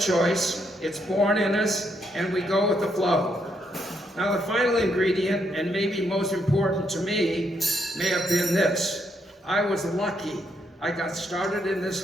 It's born in us, and we go with the flow. Now, the final ingredient, and maybe most important to me, may have been this. I was lucky. I got started in this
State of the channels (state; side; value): normal; both; correlation 0.76